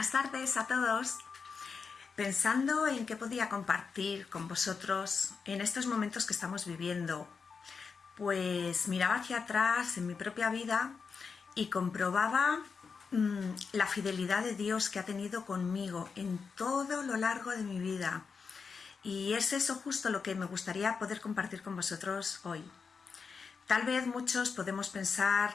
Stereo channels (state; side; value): quieter; right; 5.4 dB